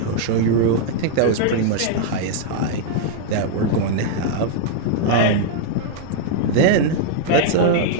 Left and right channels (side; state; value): both; different; correlation -0.01